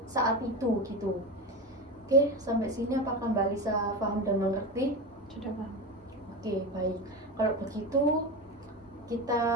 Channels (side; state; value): both; normal; correlation 0.22